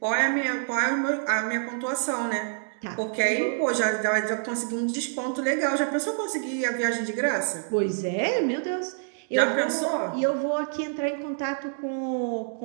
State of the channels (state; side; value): silent; left; digital silence